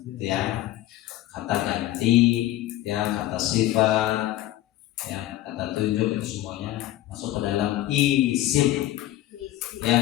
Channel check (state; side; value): quieter; right; 14.7 dB